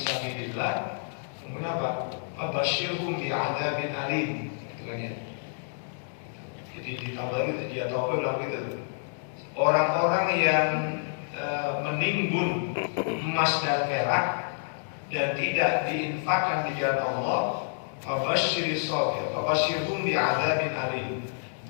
Kemudian apa? Fabasyirhum bi'adzabin alim. Itu kan ya. Jadi di Tabari dia tahu bilang gitu. Orang-orang yang menimbun emas dan perak dan tidak diinfakkan di jalan Allah, fabasyirhum bi'adzabin alim.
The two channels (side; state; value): right; silent; digital silence